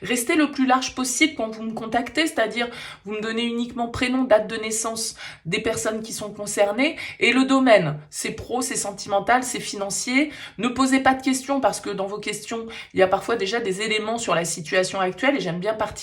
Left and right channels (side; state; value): both; identical; correlation 1.00